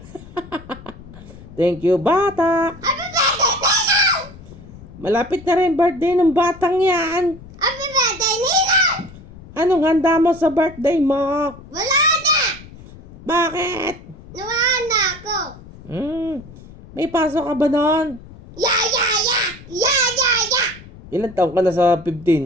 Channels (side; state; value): left; noise; rumble, 18 dB below the sound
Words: Thank you, bata. Happy birthday, Ninong. Malapit na rin birthday ng batang yan. Happy birthday, Ninong. Anong handa mo sa birthday mo? Wala na. Bakit? Nawala na ako. May pasok ka ba noon? Ya, ya, ya. Ya, ya, ya. Ilan taon ka na sa